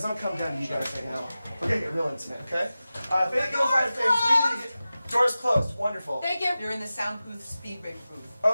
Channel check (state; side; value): inverted; both; correlation -0.95